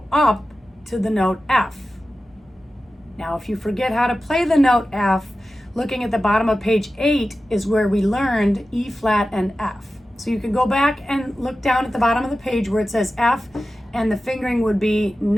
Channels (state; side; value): normal; both; correlation 0.94